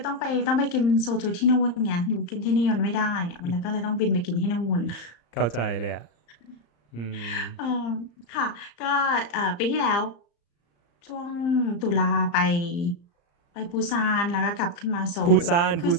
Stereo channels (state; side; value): late; right; 35 ms